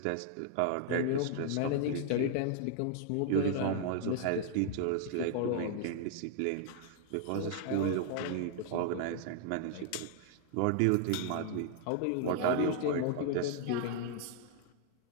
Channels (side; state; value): both; different; correlation -0.01